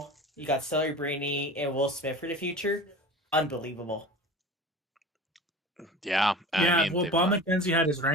you got Celebrini and Will Smith for the future. Unbelievable. Yeah, I mean, well, they've Bob got- McKenzie had his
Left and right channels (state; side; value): normal; both; correlation 0.36